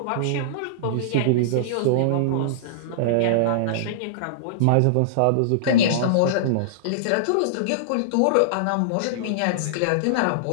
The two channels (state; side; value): different; both; correlation -0.02